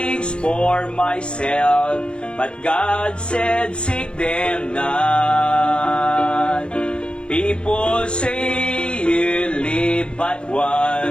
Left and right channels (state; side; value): late; right; 0.056 ms